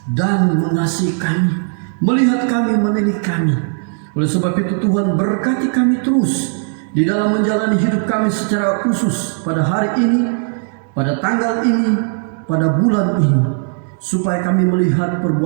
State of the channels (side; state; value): left; silent; 56 dB below the other